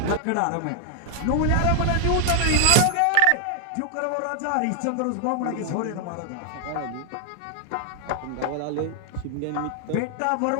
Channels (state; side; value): different; both; correlation 0.00